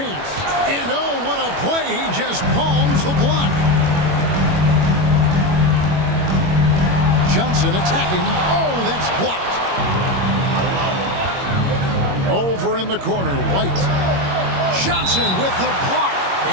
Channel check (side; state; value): left; late; 21 ms